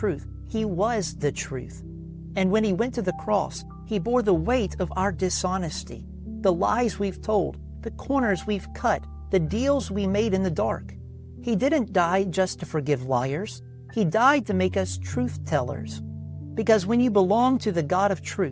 He was the truth. And when He went to the cross, He bore the weight of our dishonesty, the lies we've told, the corners we've cut, the deals we made in the dark. He didn't die just to forgive liars. He died to make us truth tellers. Because when you belong to the God of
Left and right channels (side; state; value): both; identical; correlation 1.00